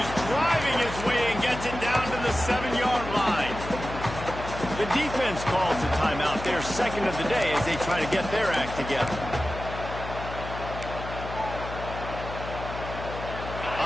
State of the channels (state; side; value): noise; left; hum, 9 dB below the sound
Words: driving his way and gets it down to the 7-yard line. The defense calls a timeout, their second of the day, as they try to get their act together.